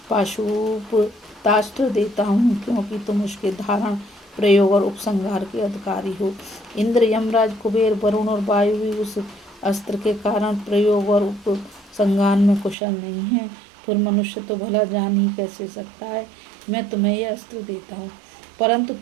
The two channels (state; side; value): drops out; left; at 12.8 s